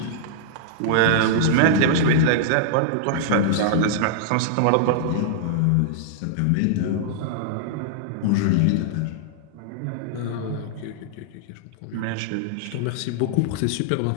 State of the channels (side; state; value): both; different; correlation -0.01